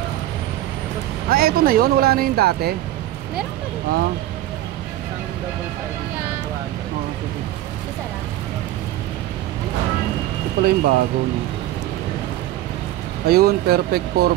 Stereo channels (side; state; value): left; quieter; 14.3 dB